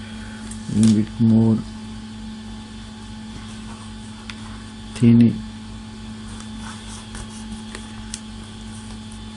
a little bit more thin.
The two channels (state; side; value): identical; both; correlation 1.00